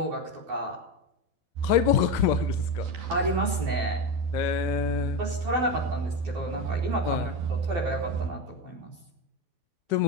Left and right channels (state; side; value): late; left; 12 ms